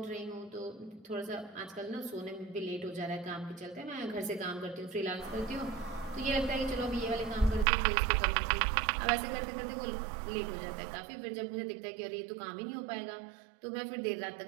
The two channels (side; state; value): left; drops out; at 7.7 s